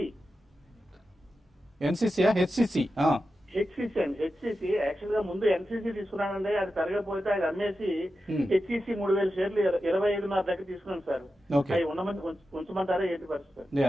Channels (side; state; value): both; normal; correlation 0.91